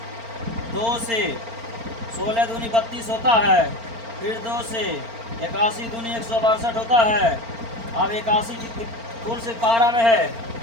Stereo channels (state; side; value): late; left; 4.4 ms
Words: 2 से 16 दूनी 32 होता है, फिर 2 से 81 दूनी 162 होता है। अब 81 कौन से पारा में है?